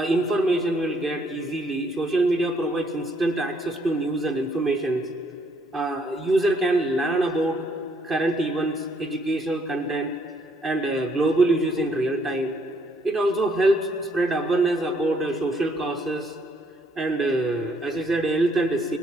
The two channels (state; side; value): normal; both; correlation 0.69